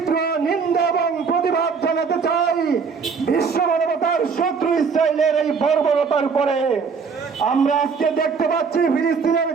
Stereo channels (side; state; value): left; quieter; 5.5 dB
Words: নিন্দা এবং প্রতিবাদ জানাতে চাই বিশ্ব মানবতার শত্রু ইসরায়েলের এই বর্বরতার উপরে। আমরা আজকে দেখতে পাচ্ছি ফিলিস্তিনের